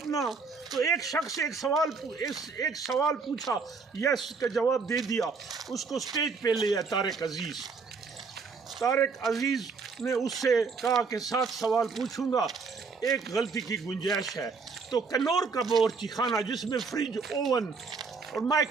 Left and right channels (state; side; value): quieter; left; 4.8 dB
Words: تو ایک شخص ایک سوال پوچھا، یس کا جواب دے دیا، اس کو سٹیج پہ لیا طارق عزیز نے اس سے کہا کہ 7 سوال پوچھوں گا، ایک غلطی کی گنجائش ہے. تو کنور کا باورچی خانہ جس میں فریج، اوون اور